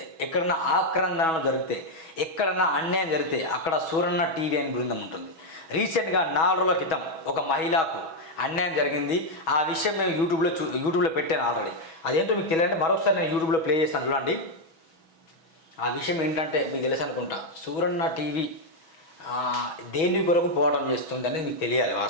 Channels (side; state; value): right; late; 6.2 ms